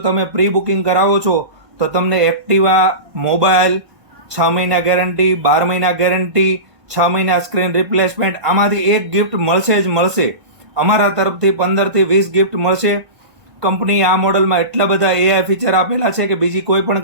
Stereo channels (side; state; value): left; late; 1.5 ms